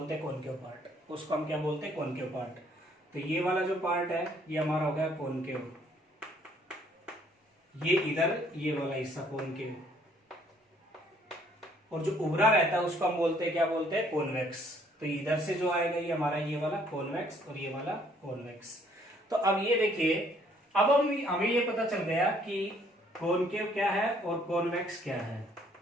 हैं कॉनकेव पार्ट, उसको हम क्या बोलते हैं, कॉनकेव पार्ट। तो ये वाला जो पार्ट है ये हमारा हो गया कॉनकेव, ये इधर ये वाला हिस्सा कॉनकेव, और जो उभरा रहता है उसको हम बोलते हैं, क्या बोलते हैं, कॉन्वेक्स। तो इधर से जो आएगा ये हमारा ये वाला कॉन्वेक्स और ये वाला कॉन्वेक्स। तो अब ये देखिए, अब हमें ये पता चल गया कि कॉनकेव क्या है और कॉन्वेक्स क्या है।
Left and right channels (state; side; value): normal; both; correlation 0.64